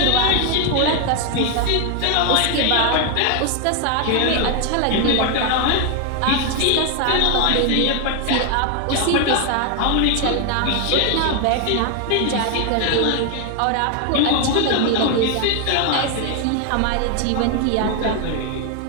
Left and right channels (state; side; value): different; both; correlation 0.01